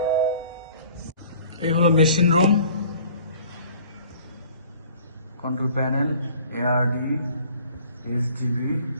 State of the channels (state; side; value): inverted; both; correlation -0.51